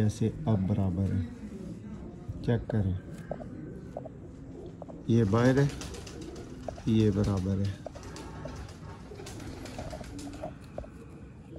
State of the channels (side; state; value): both; identical; correlation 1.00